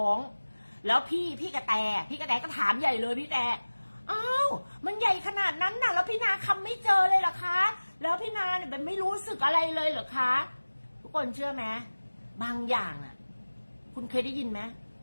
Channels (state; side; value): inverted; both; correlation -1.00